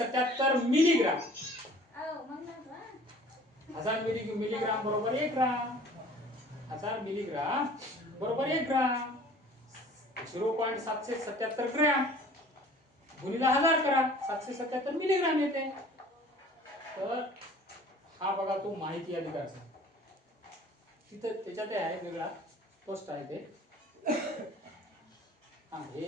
मिलीग्राम. 1000 मिलीग्राम बरोबर 1 ग्राम. 1000 मिलीग्राम बरोबर 1 ग्राम. 0.777 ग्रॅम गुणिले 1000 करा, 777 मिलीग्राम येते. तर हा बघा तो माहिती अधिकार. तिथं त्याच्यात आहे वेगळा पोस्ट आहे ते. हा हे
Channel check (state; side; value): normal; both; correlation 0.49